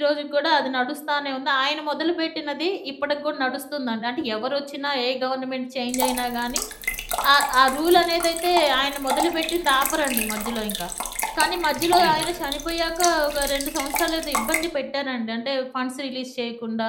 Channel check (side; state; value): both; identical; correlation 1.00